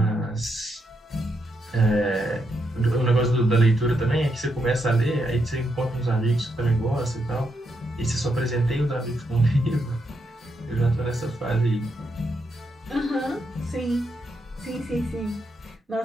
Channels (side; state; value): both; normal; correlation 0.80